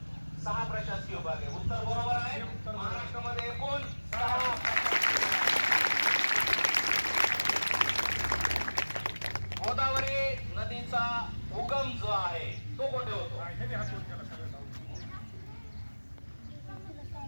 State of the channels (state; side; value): inverted; both; correlation -1.00